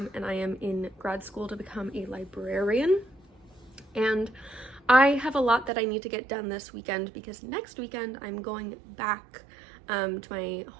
and I am in grad school to become a librarian. And I have a lot that I need to get done this weekend because next weekend I'm going back to my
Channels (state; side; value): drops out; left; at 5.7 s